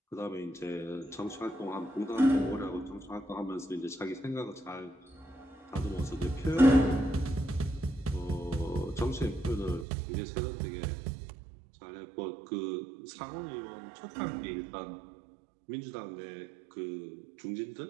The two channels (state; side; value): drops out; left; at 9.9 s